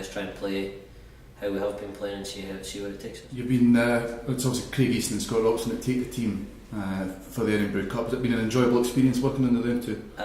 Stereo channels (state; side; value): identical; both; correlation 1.00